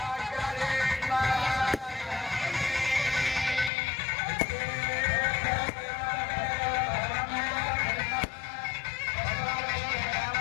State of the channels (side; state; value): right; drops out; at 3.7 s